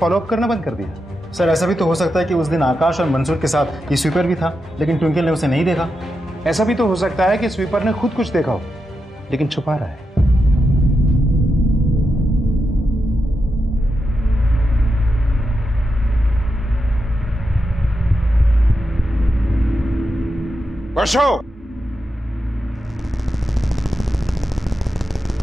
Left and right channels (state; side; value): normal; both; correlation 0.87